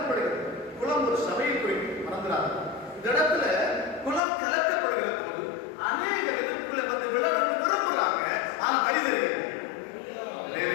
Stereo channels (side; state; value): right; drops out; at 4.2 s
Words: குளம் ஒரு சபையை குறிக்கும், மறந்துடாது. இந்த இடத்துல குளம் கலக்கப்படுகிற போது அநேக எதிர்ப்புகளை வந்து விழணும்னு விரும்புறாங்க. ஆனா வழி